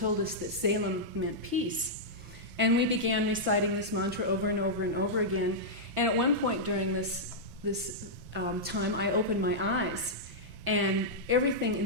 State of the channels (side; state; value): left; late; 6.0 ms